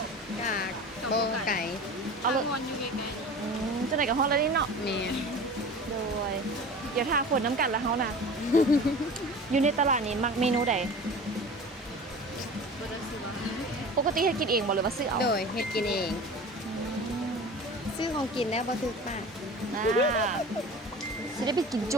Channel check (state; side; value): normal; both; correlation 0.37